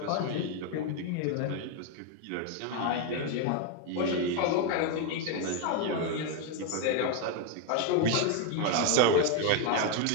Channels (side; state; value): both; different; correlation 0.01